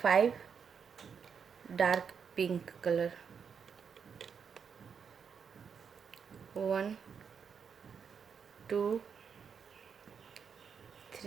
5 डार्क पिंक कलर, 1 2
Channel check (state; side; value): quieter; left; 6.6 dB